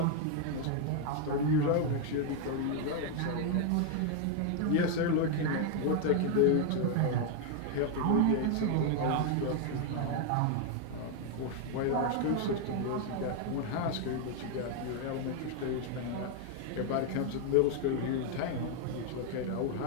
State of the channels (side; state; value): both; different; correlation 0.01